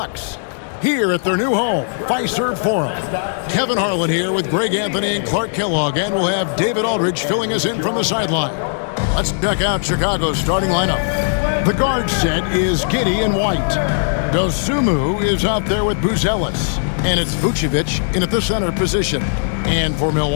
here at their new home, Fiserv Forum. Kevin Harlan here with Greg Anthony and Clark Kellogg, and we'll have David Aldridge filling us in from the sideline. Let's check out Chicago's starting lineup. The guard set is Giddey and White. Dosunmu is out there with Buzelis, and it's Vucevic in at the center position. And for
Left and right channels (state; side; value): silent; right; digital silence